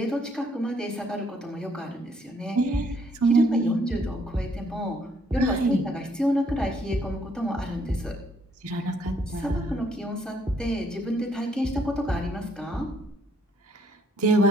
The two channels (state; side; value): normal; both; correlation 0.68